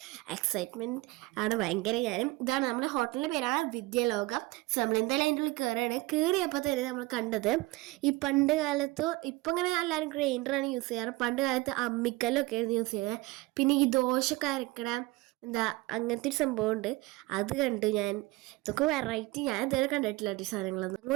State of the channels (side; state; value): left; quieter; 20.9 dB